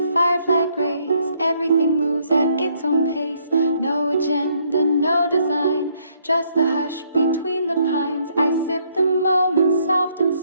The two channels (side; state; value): both; inverted; correlation -0.69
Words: firefly grace, everything moves at its own pace. No agenda, no design, just the hush between the pines. I sip the moment soft and